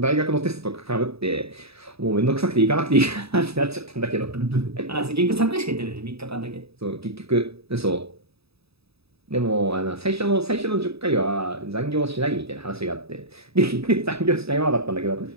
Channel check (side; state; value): left; late; 0.78 ms